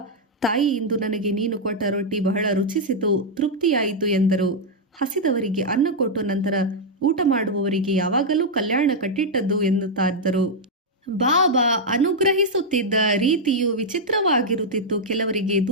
ತಾಯಿ, ಇಂದು ನನಗೆ ನೀನು ಕೊಟ್ಟ ರೊಟ್ಟಿ ಬಹಳ ರುಚಿಸಿತು, ತೃಪ್ತಿಯಾಯಿತು ಎಂದರು. ಹಸಿದವರಿಗೆ ಅನ್ನ ಕೊಟ್ಟು ನಂತರ ಊಟ ಮಾಡುವವರಿಗೆ ಯಾವಾಗಲೂ ಕಲ್ಯಾಣ ಕಟ್ಟಿಟ್ಟದ್ದು ಎನ್ನುತ್ತಾರೆ. ಬಾಬಾ ಅನುಗ್ರಹಿಸುತ್ತಿದ್ದ ರೀತಿಯು ವಿಚಿತ್ರವಾಗಿರುತ್ತಿತ್ತು. ಕೆಲವರಿಗೆ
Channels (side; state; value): both; normal; correlation -0.03